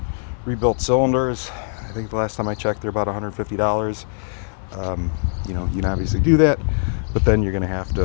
rebuilt cylinders. I think the last time I checked, they're about $150. You can obviously do that, but then you're going to have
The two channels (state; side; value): silent; right; 65 dB below the other